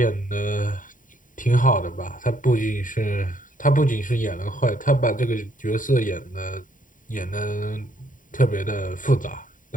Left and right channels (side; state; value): right; late; 0.38 ms